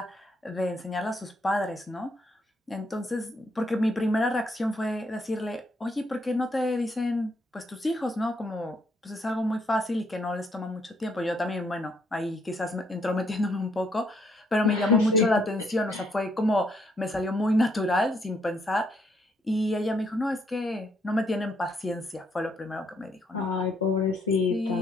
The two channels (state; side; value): normal; both; correlation 0.72